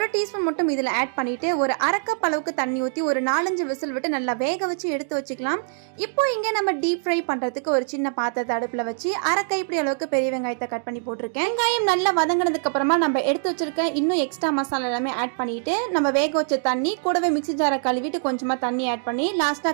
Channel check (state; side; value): silent; left; digital silence